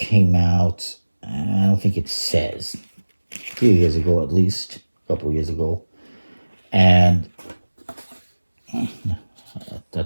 out, I don't think it says, a few years ago at least, a couple years ago. And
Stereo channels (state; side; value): inverted; both; correlation -1.00